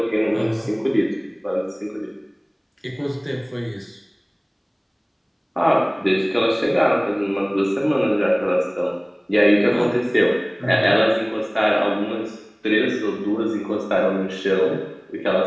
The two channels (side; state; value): both; identical; correlation 1.00